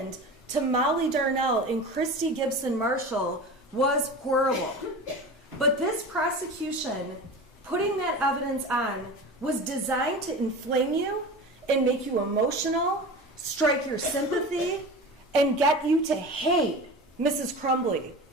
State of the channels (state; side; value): normal; both; correlation 0.32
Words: to Molly Darnell and Christy Gibson Marshall was horrible. But this prosecution, putting that evidence on, was designed to inflame you and make you emotional, strike your sympathy, and get you to hate Mrs. Crumbley,